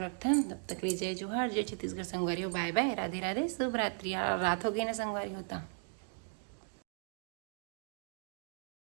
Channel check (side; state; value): left; silent; 53 dB below the other